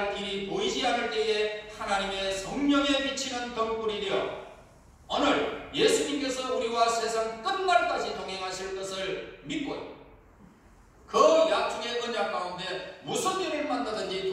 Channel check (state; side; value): identical; both; correlation 1.00